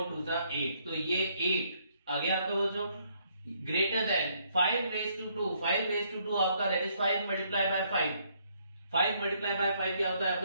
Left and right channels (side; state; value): both; inverted; correlation -0.70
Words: 2 8। तो ये 8 आ गया आपका बच्चों। Greater than 5 raise to 2, 5 raise to 2 आपका that is 5 multiply by 5। 5 multiply by 5 क्या होता है